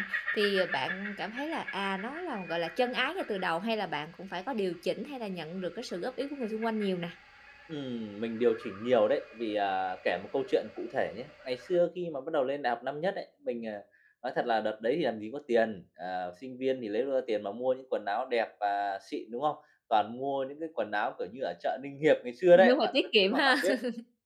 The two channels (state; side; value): identical; both; correlation 1.00